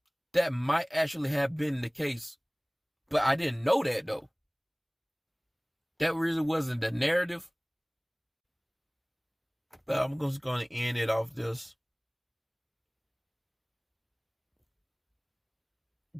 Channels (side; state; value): both; identical; correlation 1.00